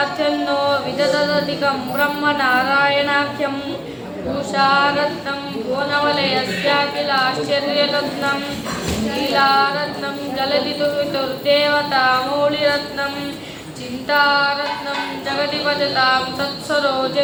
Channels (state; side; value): identical; both; correlation 1.00